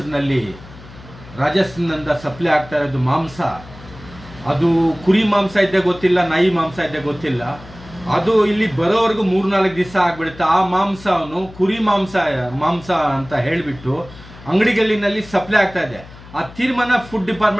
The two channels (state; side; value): noise; left; hum, 19 dB below the sound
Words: ರಾಜಸ್ಥಾನದಿಂದ ಸಪ್ಲೈ ಆಗ್ತಾ ಇರೋದು ಮಾಂಸ. ಅದು ಕುರಿ ಮಾಂಸ ಇದ್ದೇ ಗೊತ್ತಿಲ್ಲ, ನಾಯಿ ಮಾಂಸ ಇದ್ದೇ ಗೊತ್ತಿಲ್ಲ. ಅದು ಇಲ್ಲಿ ಬರೋವರೆಗೂ 3-4 ದಿವಸ ಆಗ್ಬಿಡುತ್ತೆ. ಆ ಮಾಂಸವನ್ನು ಕುರಿ ಮಾಂಸ ಅಂತ ಹೇಳಿಬಿಟ್ಟು ಅಂಗಡಿಗಳಿನಲ್ಲಿ ಸಪ್ಲೈ ಆಗ್ತಾ ಇದೆ. ಆ ತೀರ್ಮಾನ ಫುಡ್